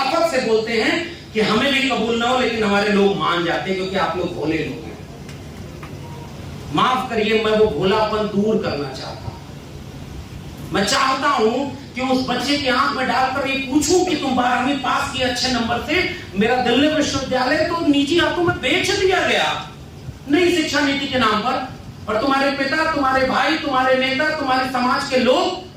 से बोलते हैं कि हमें भी कबूल ना हो, लेकिन हमारे लोग मान जाते हैं क्योंकि आप लोग भोले लोग हैं। माफ करिए, मैं वो भोलापन दूर करना चाहता हूं। मैं चाहता हूं कि उस बच्चे की आंख में डालकर ये पूछूं कि तुम 12वीं पास किए अच्छे नंबर से, मेरा दिल्ली विश्वविद्यालय तो निजी हाथों में बेच दिया गया नई शिक्षा नीति के नाम पर, और तुम्हारे पिता, तुम्हारे भाई, तुम्हारे नेता, तुम्हारे समाज के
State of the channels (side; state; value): both; identical; correlation 1.00